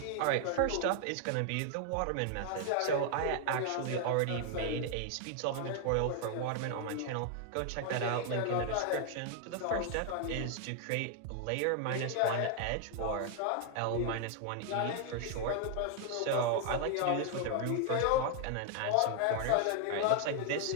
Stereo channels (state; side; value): different; both; correlation 0.00